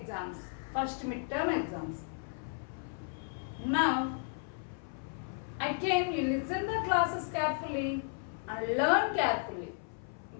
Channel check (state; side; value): silent; right; 55 dB below the other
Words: first midterm exams. Now, again, you listen the classes carefully and learn carefully